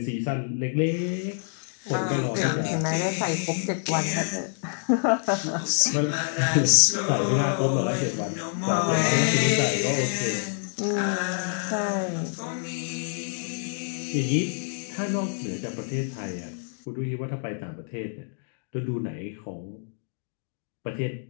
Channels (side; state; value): right; silent; digital silence